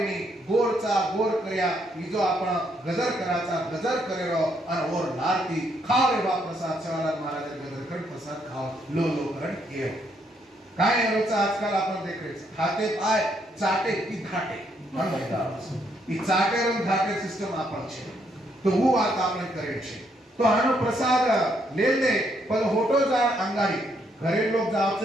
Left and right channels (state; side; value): normal; both; correlation 0.73